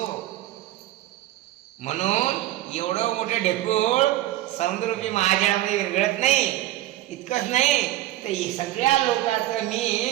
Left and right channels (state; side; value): quieter; left; 14.7 dB